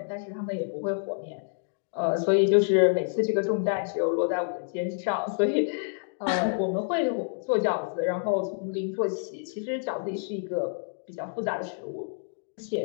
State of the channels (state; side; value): silent; right; digital silence